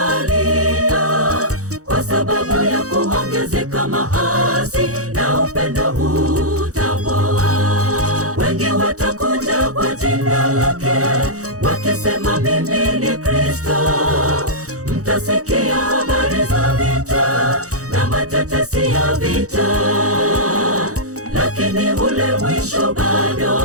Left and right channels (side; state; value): left; late; 0.65 ms